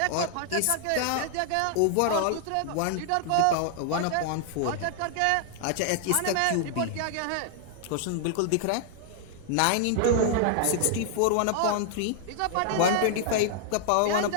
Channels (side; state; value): both; different; correlation -0.01